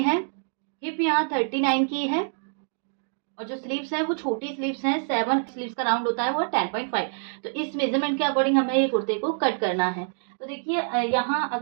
है, हिप यहाँ 39 की है, और जो स्लीव्स है वो छोटी स्लीव्स हैं, 7 स्लीव्स का राउंड होता है, वो 10.5। तो इस मेजरमेंट के अकॉर्डिंग हमें ये कुर्ते को कट करना है। तो देखिए यहाँ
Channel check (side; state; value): left; silent; 61 dB below the other